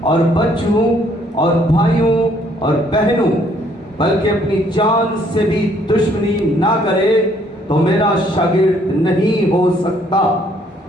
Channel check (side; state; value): both; normal; correlation 0.65